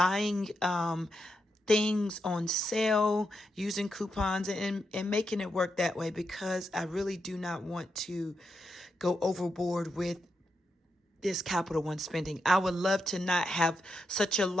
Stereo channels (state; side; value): normal; both; correlation 0.84